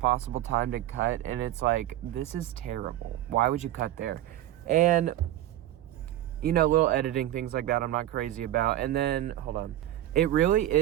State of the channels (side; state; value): left; quieter; 13.5 dB